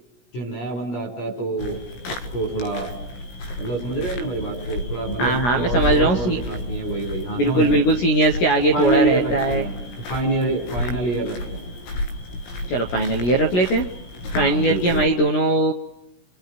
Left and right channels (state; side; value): late; right; 17 ms